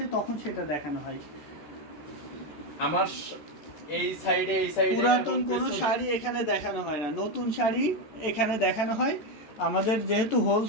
তখন সেটা দেখানো হয়। আমার এই সাইডে পুরাতন কোনো শাড়ি এখানে দেখানো হয় না, নতুন শাড়ি এখানে দেখানো হয়। আমাদের যেহেতু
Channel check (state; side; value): late; right; 14 ms